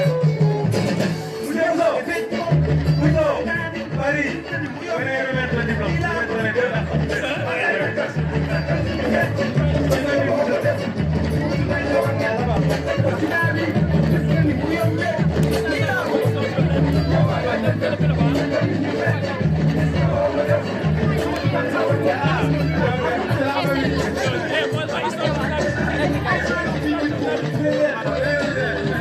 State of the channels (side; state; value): both; identical; correlation 1.00